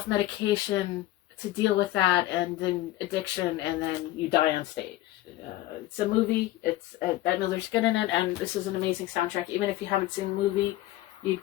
to deal with that, and then addiction, and then you die on stage. It's a movie. It's Bette Midler's good in it, and this is an amazing soundtrack. Even if you haven't seen the movie, you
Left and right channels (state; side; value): quieter; right; 15.9 dB